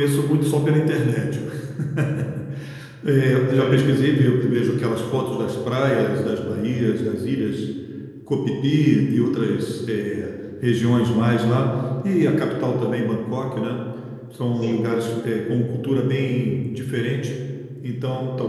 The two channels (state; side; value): identical; both; correlation 1.00